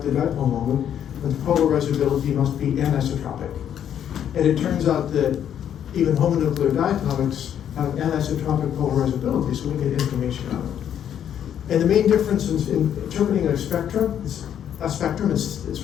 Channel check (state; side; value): quieter; right; 9.6 dB